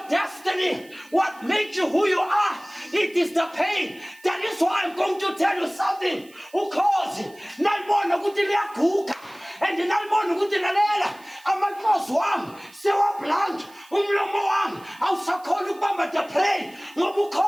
destiny? What makes you who you are? It is the pain. That is why I'm going to tell you something. Ukhozi nalibona ukuthi liyaguga and nalibona ukuthi lalela amakhosi wami sewablank umlomo wami awusakhona ukubamba the prey ngoba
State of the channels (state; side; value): noise; right; hiss, 26 dB below the sound